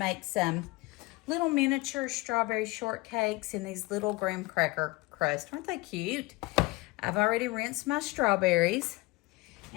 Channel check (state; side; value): quieter; right; 22.7 dB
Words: some little miniature strawberry shortcakes in these little graham cracker crust. Aren't they cute? I've already rinsed my strawberries,